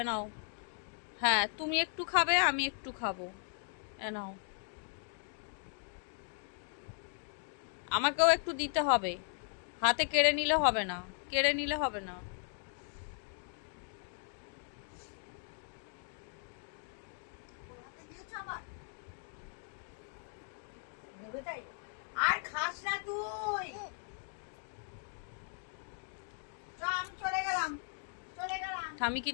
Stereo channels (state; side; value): silent; right; 53 dB below the other